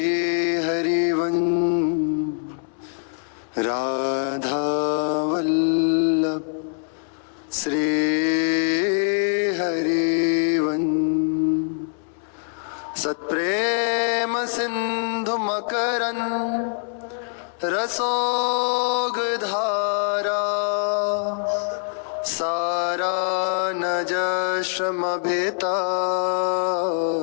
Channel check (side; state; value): right; silent; 63 dB below the other